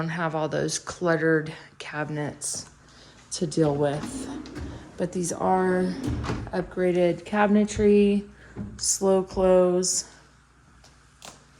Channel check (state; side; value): identical; both; correlation 1.00